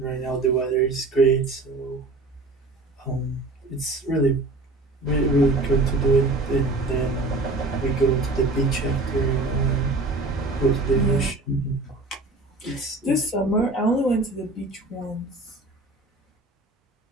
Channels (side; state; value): left; quieter; 3.1 dB